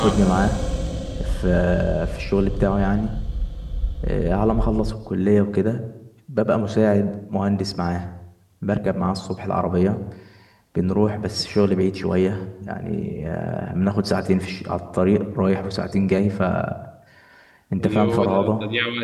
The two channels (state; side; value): identical; both; correlation 1.00